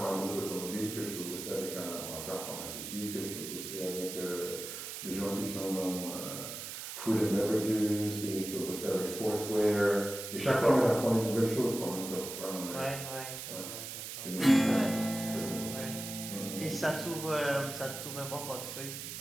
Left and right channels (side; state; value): right; noise; hiss, 8 dB below the sound